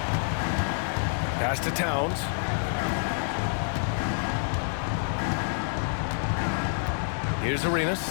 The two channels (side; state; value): right; silent; 60 dB below the other